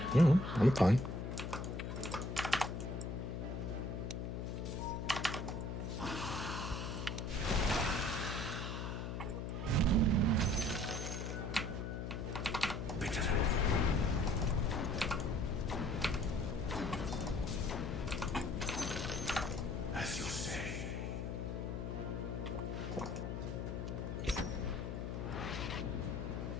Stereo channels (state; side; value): noise; left; hum, 4 dB below the sound